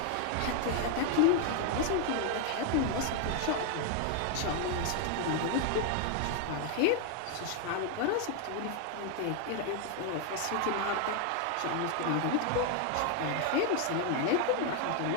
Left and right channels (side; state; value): both; different; correlation 0.00